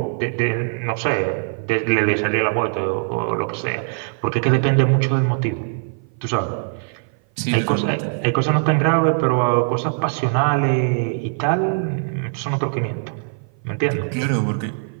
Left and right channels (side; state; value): left; silent; 56 dB below the other